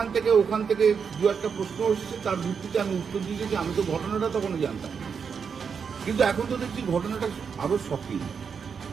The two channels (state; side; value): quieter; left; 6.3 dB